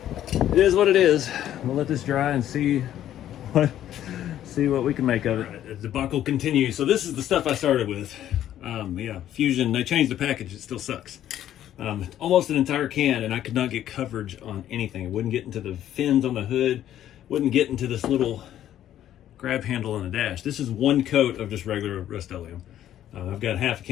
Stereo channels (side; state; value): right; quieter; 11.7 dB